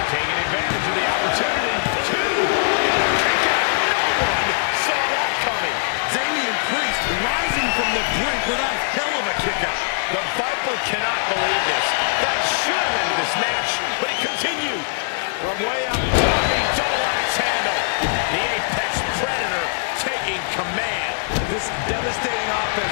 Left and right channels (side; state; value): right; silent; digital silence